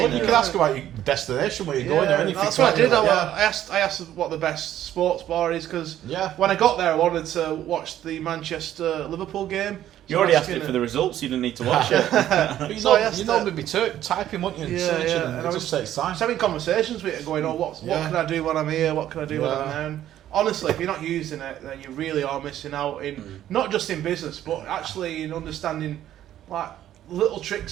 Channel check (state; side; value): quieter; left; 12.0 dB